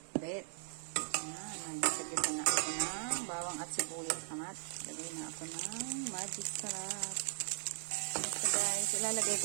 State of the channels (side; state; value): left; silent; 52 dB below the other